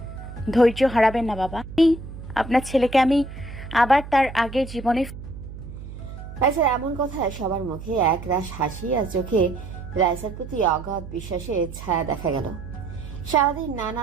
ধৈর্য হারাবেন না বাবা, আপনার ছেলেকে আমি আবার তার আগের জীবনে। রাইসার এমন কথায় সবার মুখে এক রাশ হাসি আর চোখে রাইসার প্রতি অগাধ বিশ্বাসের ছায়া দেখা গেল। সারাদিন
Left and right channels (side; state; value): right; noise; hum, 12 dB below the sound